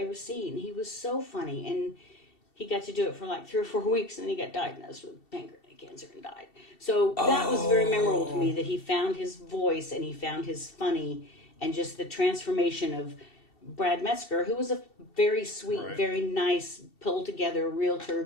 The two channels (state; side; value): late; right; 2.7 ms